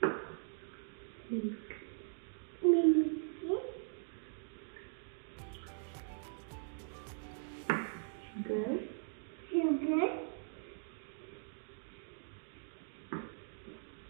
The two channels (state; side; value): silent; left; digital silence